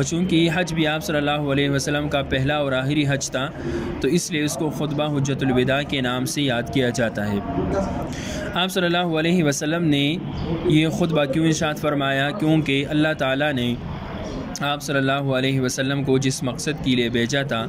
چونکہ یہ حج بھی آپ صلی اللہ علیہ وسلم کا پہلا اور آخری حج تھا تو اس لیے اس کو خطبہ حجت الوداع کے نام سے یاد کیا جاتا ہے۔ آپ صلی اللہ علیہ وسلم نے یہ خطبہ کیوں ارشاد فرمایا؟ کیونکہ اللہ تعالیٰ نے آپ صلی اللہ علیہ وسلم کو جس مقصد کے لیے بھیجا تھا،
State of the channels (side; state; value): both; identical; correlation 1.00